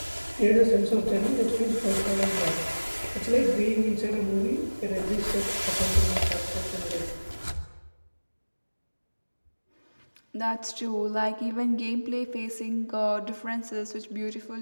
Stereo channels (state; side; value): inverted; both; correlation -1.00